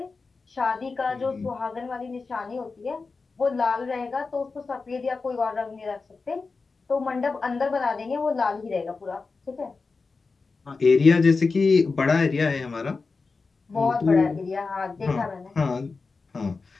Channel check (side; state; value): right; quieter; 4.3 dB